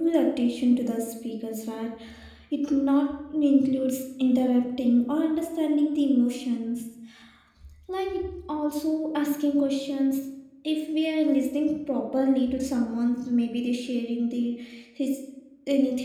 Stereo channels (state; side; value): identical; both; correlation 1.00